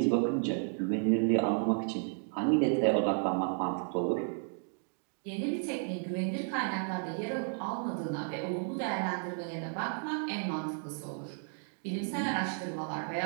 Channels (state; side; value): silent; left; 56 dB below the other